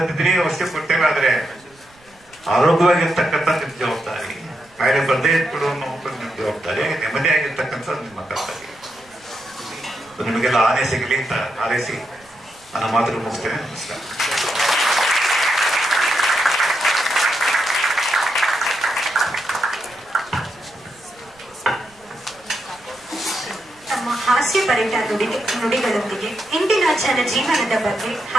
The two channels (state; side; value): noise; right; rumble, 29 dB below the sound